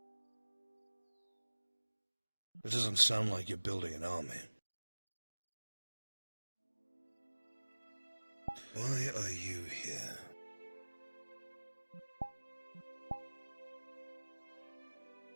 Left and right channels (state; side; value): inverted; both; correlation -1.00